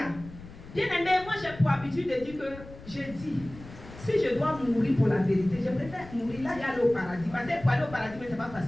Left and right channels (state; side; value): noise; left; rumble, 17 dB below the sound